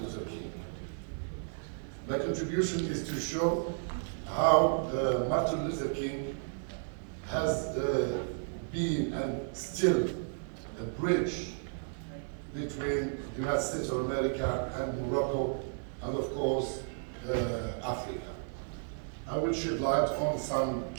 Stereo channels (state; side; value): silent; left; digital silence